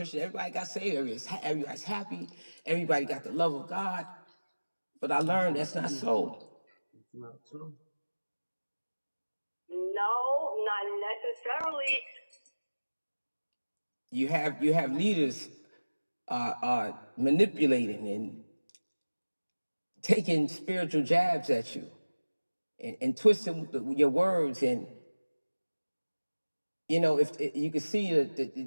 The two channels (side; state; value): both; inverted; correlation -1.00